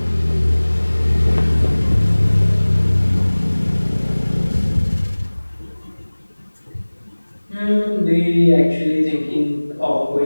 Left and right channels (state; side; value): inverted; both; correlation -1.00